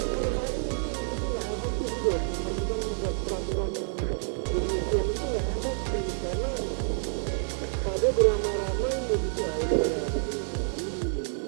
menurut saya ini nggak efektif itu. Pemerintah membuat peraturan yang demikian itu nggak efektif, karena pada beramai-ramai mudik, ini pada ngabuburitnya, ini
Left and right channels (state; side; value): silent; left; digital silence